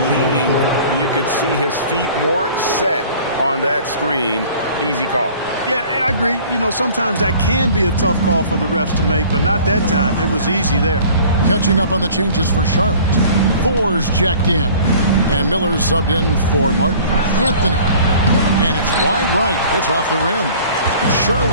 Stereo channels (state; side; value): inverted; both; correlation -0.48